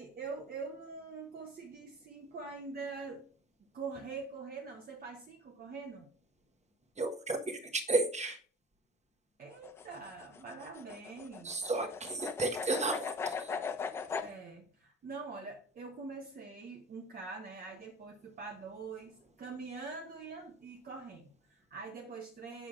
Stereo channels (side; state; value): both; normal; correlation 0.42